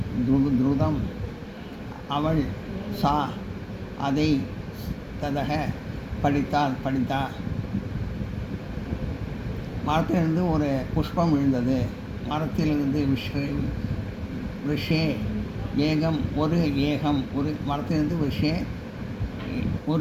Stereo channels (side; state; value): both; identical; correlation 1.00